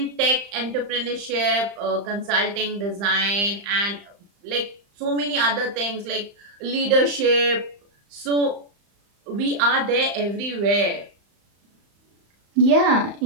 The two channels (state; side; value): late; left; 35 ms